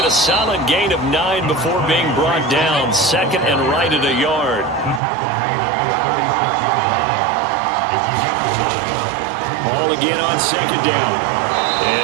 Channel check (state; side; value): drops out; left; at 5.0 s